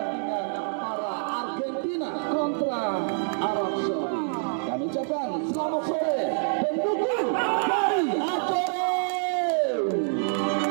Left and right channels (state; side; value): silent; left; digital silence